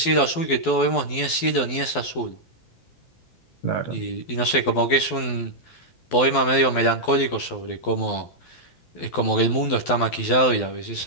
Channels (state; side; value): late; right; 12 ms